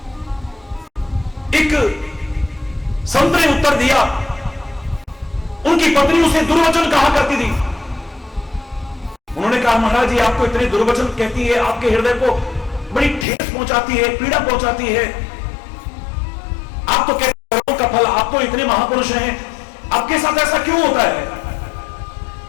एक संत ने उत्तर दिया, उनकी पत्नी उसे दुर्वचन कहा करती थी। उन्होंने कहा, महाराज जी आपको इतने दुर्वचन कहती है, आपके हृदय को बड़ी ठेस पहुंचाती है, पीड़ा पहुंचाती है। आप तो कहते कर्मों का फल, आप तो इतने महापुरुष हैं, आपके साथ ऐसा क्यों होता है?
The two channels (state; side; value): drops out; right; at 13.2 s